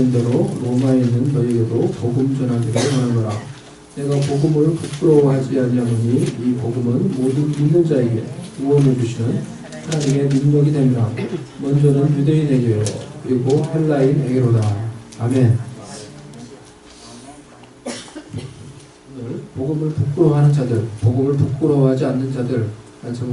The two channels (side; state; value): both; identical; correlation 1.00